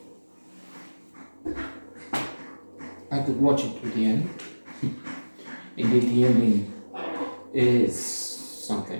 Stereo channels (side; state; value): both; inverted; correlation -1.00